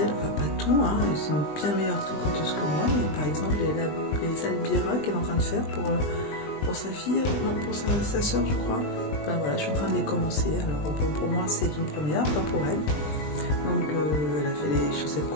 enfin pas tout, hein, elles sont bien meilleures triconteuses que moi, mais par exemple les Albira qu'elle est en train de faire pour sa fille, non, pour sa soeur je crois. Enfin, voilà, je suis en train de les commencer, alors bon, pour moi c'est une première, pas pour elle. Donc elle a fait les chaussettes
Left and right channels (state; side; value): late; right; 20 ms